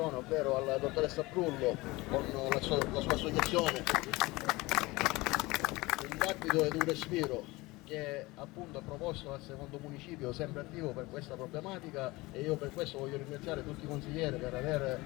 ovvero alla dottoressa Brullo con la sua associazione Un Battito ed un Respiro, che appunto ha proposto al secondo municipio, sempre attivo per questa problematica, e io per questo voglio ringraziare tutti i consiglieri per aver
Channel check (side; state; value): right; quieter; 21.5 dB